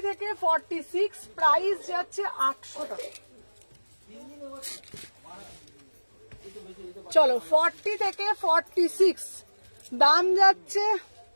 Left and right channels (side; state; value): both; inverted; correlation -1.00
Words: থেকে 46, প্রাইস যাচ্ছে 800 টাকা। চলো 40 থেকে 46 দাম যাচ্ছে।